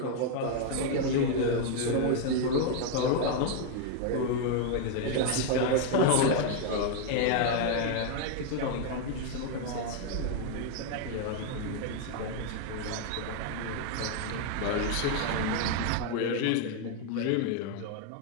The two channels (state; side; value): different; both; correlation 0.00